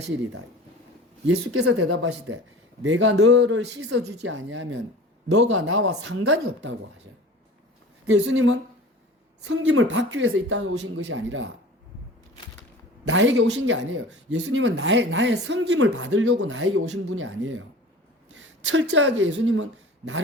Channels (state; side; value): normal; both; correlation 0.40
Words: 예수께서 대답하시되 내가 너를 씻어주지 아니하면 너가 나와 상관이 없다고 하셔요. 예수님은 섬김을 받기 위해서 이 땅에 오신 것이 아니라 나에게 오신 게 아니에요. 예수님은 나의 섬김을 받으려고 나에게 오신 분이 아니에요. 철저하게 예수님은